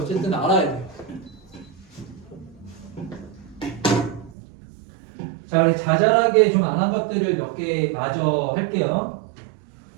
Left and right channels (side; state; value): left; drops out; at 4.4 s